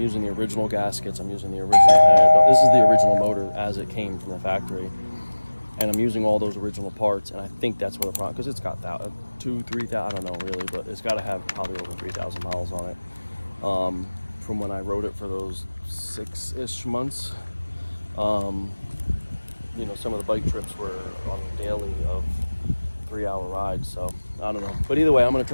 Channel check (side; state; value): both; inverted; correlation -1.00